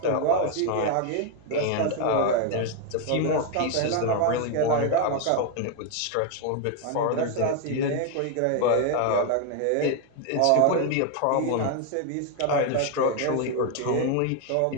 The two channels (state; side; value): different; both; correlation 0.01